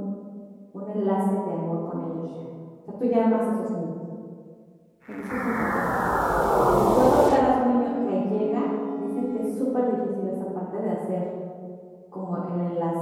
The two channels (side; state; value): both; identical; correlation 1.00